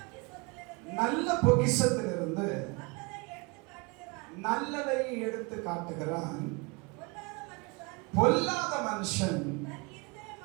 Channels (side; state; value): left; quieter; 28.7 dB